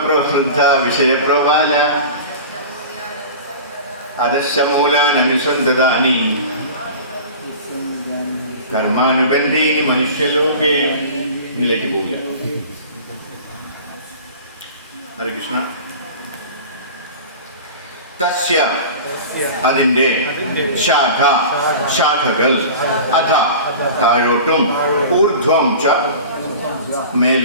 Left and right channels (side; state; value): both; inverted; correlation -0.36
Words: വിഷയപ്രബാല അധശ്ചമൂലാനനുസന്തതാനി കർമാനുബന്ധീനി മനുഷ്യലോകേ. ഇതിലേക്ക് പോകില്ല. ഹരേ കൃഷ്ണ. തസ്യ അതിന്റെ ശാഖ ശാഖകൾ അധ താഴോട്ടും ഊർധ്വം ച